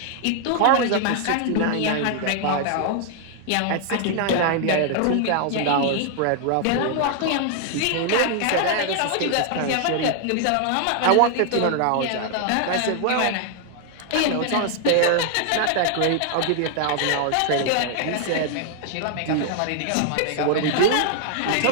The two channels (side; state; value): both; different; correlation 0.00